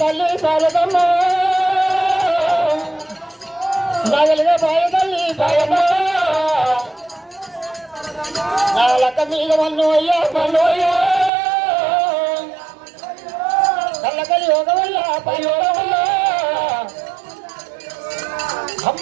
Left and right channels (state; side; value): drops out; left; at 11.3 s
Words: పాలకమ్మ నాగలిగా బాయ తల్లి పాలకమ్మ నా లక్క మీద మన్నోయ్యా మన్నోయ్యా కళ్ళకలి ఒక వల్ల పయోగ వల్ల